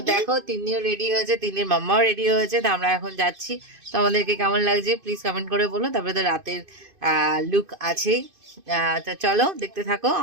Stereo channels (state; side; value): late; left; 2.5 ms